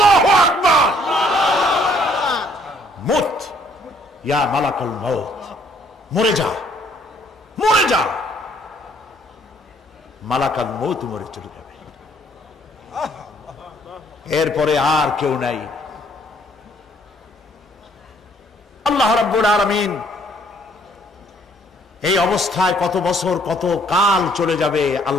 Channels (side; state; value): both; normal; correlation 0.64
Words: আকবার। মুত ইয়া মালাকাল মউত, মরে যা, মরে যা। মালাকাল মউত মরে চলে যাবে, এরপরে আর কেউ নাই। আল্লাহ রাব্বুল আলামিন এই অবস্থায় কত বছর কত কাল চলে যাবে